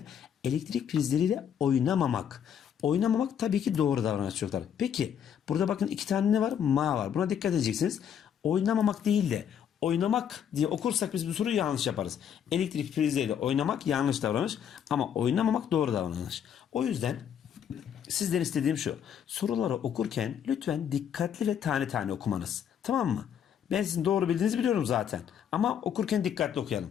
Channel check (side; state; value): right; quieter; 8.7 dB